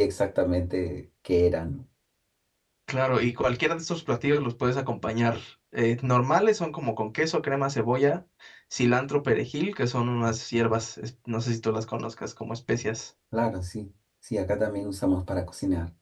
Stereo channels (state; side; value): identical; both; correlation 1.00